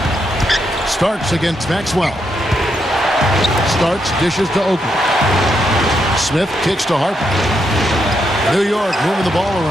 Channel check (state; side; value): normal; both; correlation 0.80